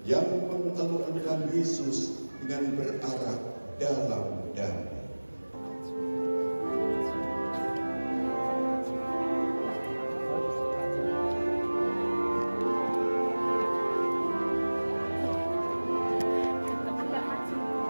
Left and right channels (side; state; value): both; inverted; correlation -1.00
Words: yang mengeluarkan Yesus dengan berarah dalam damai.